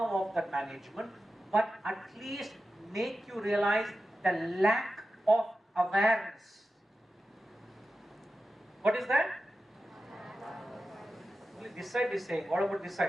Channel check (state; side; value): normal; both; correlation 0.93